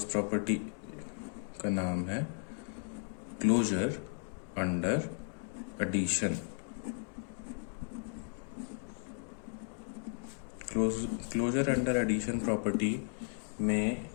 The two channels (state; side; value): silent; right; 54 dB below the other